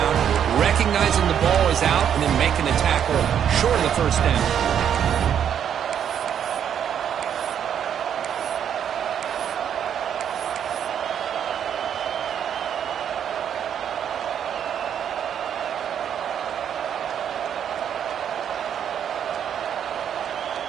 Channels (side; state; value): left; quieter; 8.9 dB